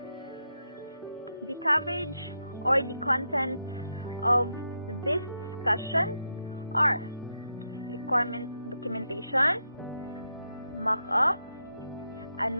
The coverage or the contents of this discussion are requirement documentation, mock-up,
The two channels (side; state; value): both; inverted; correlation -0.84